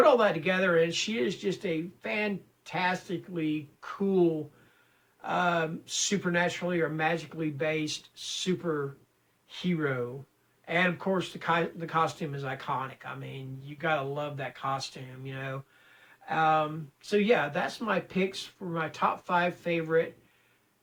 all that together, and she is just a fantastically cool, supernaturally or magically based superhero. And, of course, the costume is iconic. I mean, you got to love that costume, So, yeah, that's my picks for my top 5 favorite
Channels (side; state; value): both; identical; correlation 1.00